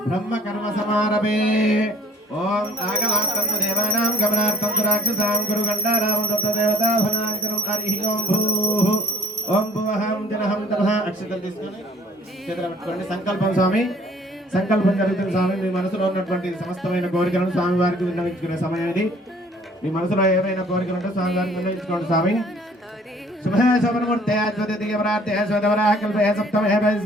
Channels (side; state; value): both; normal; correlation 0.56